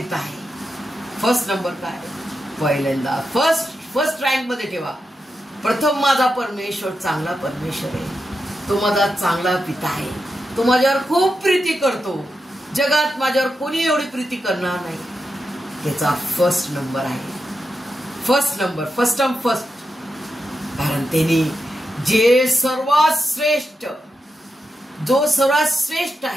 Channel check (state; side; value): normal; both; correlation 0.88